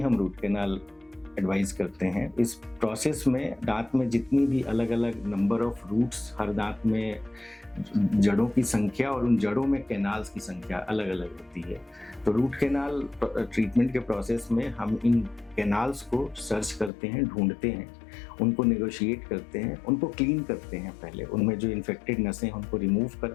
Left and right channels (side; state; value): right; drops out; at 16.9 s